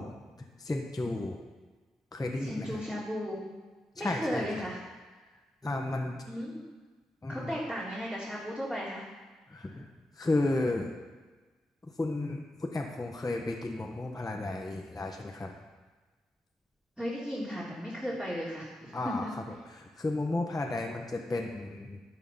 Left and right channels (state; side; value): normal; both; correlation 0.89